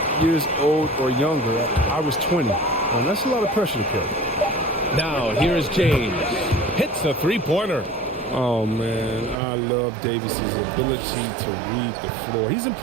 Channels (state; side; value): drops out; left; at 9.3 s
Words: years old or younger. I was 20. And that's a lot of pressure to carry. Now, here is James. Hits a three-pointer. Oh, man, I love Davis's ability to read the floor. He's